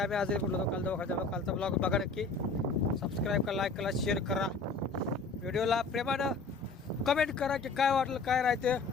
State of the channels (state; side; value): quieter; right; 4.0 dB